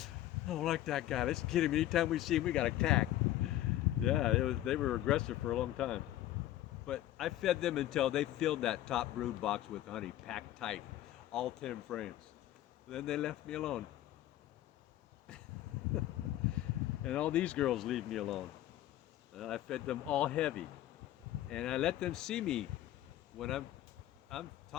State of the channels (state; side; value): quieter; right; 13.8 dB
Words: don't like that guy. Let's get him. Anytime we see him, we got to attack. Yeah, they were aggressive for a long time. But I fed them until they filled that top brood box with honey, packed tight, all 10 frames. Then they left me alone. And all these girls leave me alone. And I fed them all heavy. And I let them see me when I'm